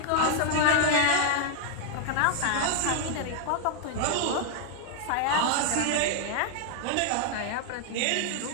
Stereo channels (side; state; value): both; different; correlation 0.00